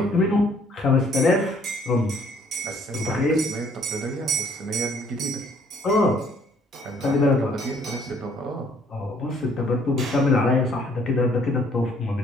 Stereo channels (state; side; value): normal; both; correlation 0.61